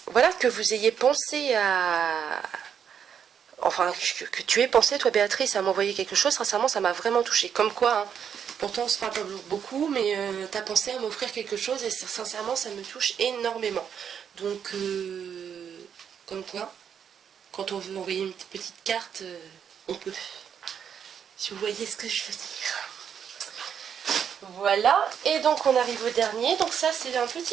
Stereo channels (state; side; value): quieter; left; 8.0 dB